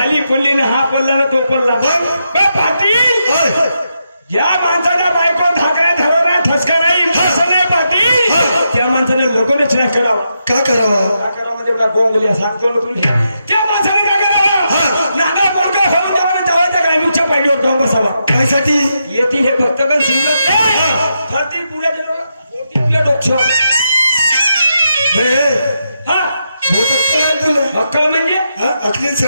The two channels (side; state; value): both; inverted; correlation -0.83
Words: पडली ना, हा पडला ना तो पडला. पाटील, ज्या माणसाच्या बायको धाकऱ्या ठरवणार ठसका नाही असं नाही पाटील, त्या माणसाने लगोनच नाही करावा. का करावा? का करावा म्हणजे मला बोंगल्या सांगतो ना तुम्ही. त्या माणसाने काय करावा? नागा पोरगा होऊन त्याला जवळच्या ग्रामीणच्या पायरीवर जाऊन बसावा. त्यासाठी येतील हे भक्तगण शिवत नाही, फरती पुढे गेलो तुला डोक्ष. हा तुला अक्कल म्हणजे अखली